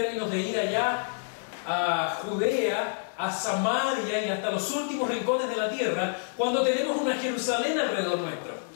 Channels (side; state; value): right; silent; digital silence